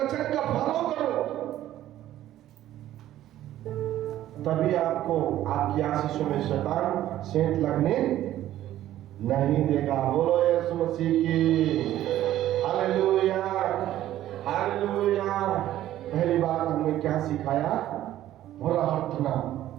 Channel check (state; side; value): quieter; left; 13.2 dB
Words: का फॉलो करो, तभी आपको आपकी आशीषों में शैतान सेंध लगने नहीं देगा। बोलो यीशु मसीह की। Hallelujah, hallelujah. पहली बात हमने क्या सिखाया? प्रार्थना।